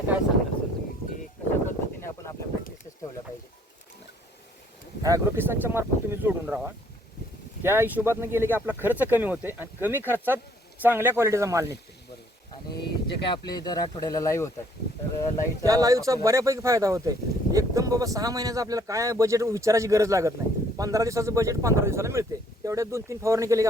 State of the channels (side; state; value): both; normal; correlation 0.62